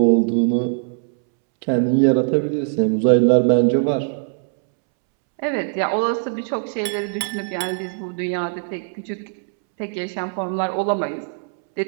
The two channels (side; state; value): left; silent; 65 dB below the other